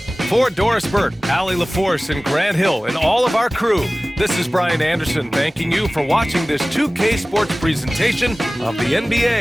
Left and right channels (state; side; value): normal; both; correlation 0.98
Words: For Doris Burke, Allie LaForce, and Grant Hill, and all of our crew, this is Brian Anderson thanking you for watching this 2K Sports presentation of the